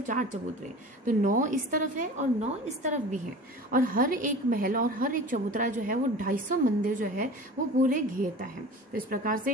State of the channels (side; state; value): both; normal; correlation 0.38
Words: 4 चबूतरे, तो 9 इस तरफ है और 9 इस तरफ भी है, और हर एक महल और हर एक चबूतरा जो है वो 250 मंदिर जो है वो पूरे घेरता है। तो इस प्रकार